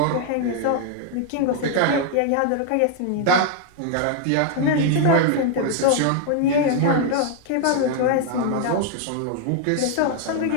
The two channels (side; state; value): both; different; correlation 0.00